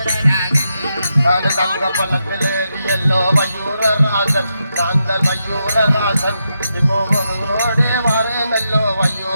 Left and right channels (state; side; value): inverted; both; correlation -0.85